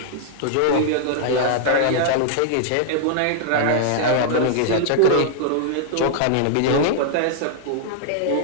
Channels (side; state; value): both; different; correlation -0.01